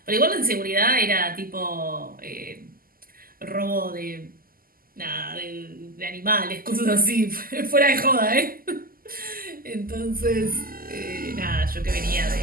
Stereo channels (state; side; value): late; left; 0.42 ms